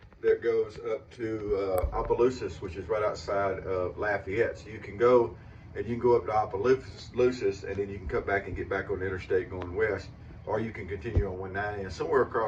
that goes up to Opelousas, which is right outside of Lafayette. So you can go and you can go up to Opelousas, and then you can come back and get back on the interstate going west, or you can continue on 190, and somewhere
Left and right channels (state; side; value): identical; both; correlation 1.00